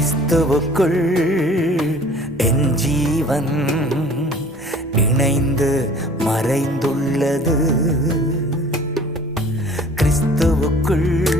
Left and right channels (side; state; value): both; normal; correlation 0.49